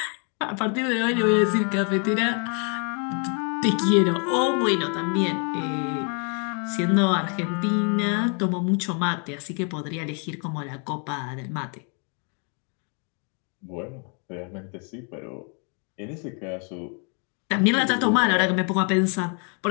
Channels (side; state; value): right; quieter; 38.4 dB